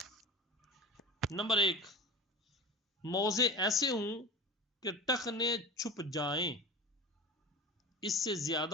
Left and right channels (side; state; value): both; normal; correlation 0.32